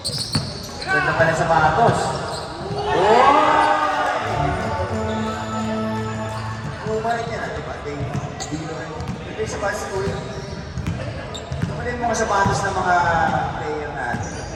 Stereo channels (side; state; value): both; identical; correlation 1.00